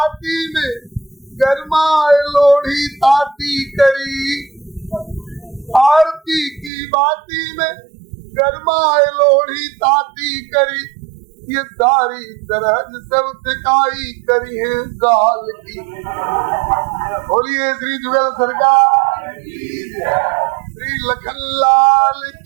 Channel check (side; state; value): left; drops out; at 6.7 s